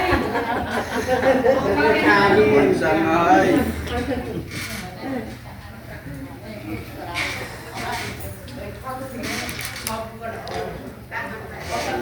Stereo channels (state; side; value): identical; both; correlation 1.00